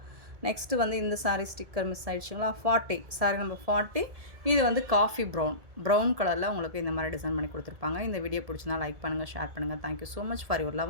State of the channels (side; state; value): left; late; 1.7 ms